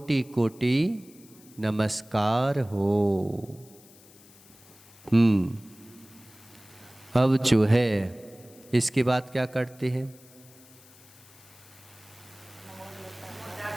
कोटि नमस्कार हो। अब जो है इसके बाद क्या करते हैं?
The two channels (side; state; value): left; noise; hiss, 24 dB below the sound